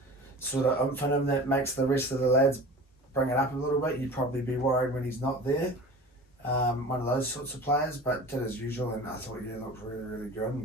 sort of oomph in him that makes the rest of the lads bring it up a little bit. You'd probably be worried when he's not there. One of those sorts of players, but did as usual, and I thought looked really, really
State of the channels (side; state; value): both; normal; correlation 0.38